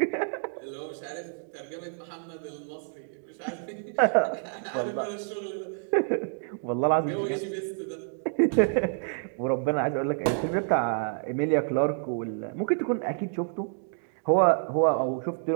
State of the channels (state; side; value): silent; left; digital silence